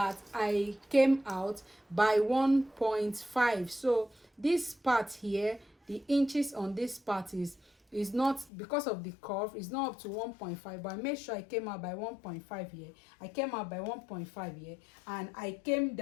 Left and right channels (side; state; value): right; drops out; at 8.5 s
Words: I came out by 1.5. So this part here, the inches on this part is not, because of the curve, it's not up to 1.5, but I made sure I came out by 1.5 here. I came out by 1.5 here, and I came